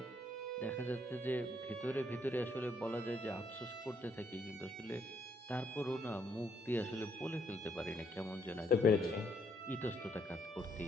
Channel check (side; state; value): both; normal; correlation 0.71